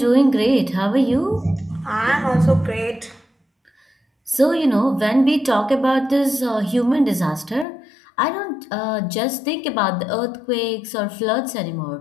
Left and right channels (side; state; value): right; drops out; at 7.7 s